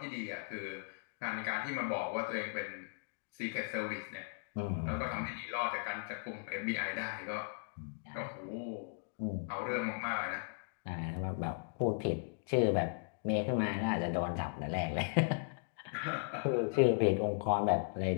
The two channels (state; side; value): silent; right; digital silence